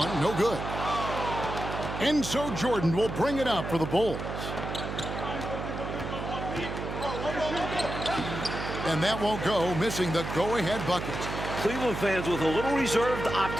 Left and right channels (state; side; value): noise; right; hum, 6 dB below the sound